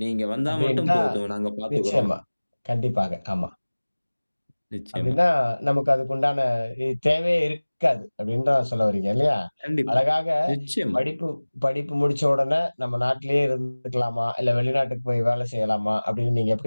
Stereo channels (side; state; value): both; inverted; correlation -1.00